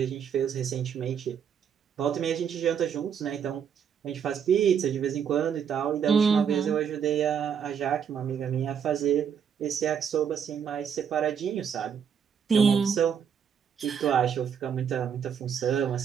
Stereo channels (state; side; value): quieter; left; 7.7 dB